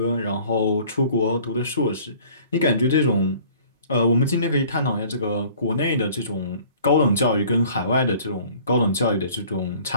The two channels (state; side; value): inverted; both; correlation -0.51